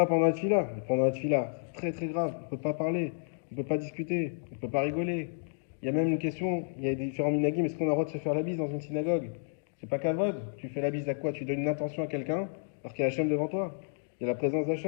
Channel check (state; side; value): silent; right; digital silence